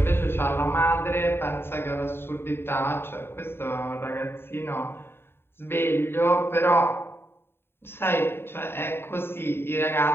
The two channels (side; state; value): right; late; 0.11 ms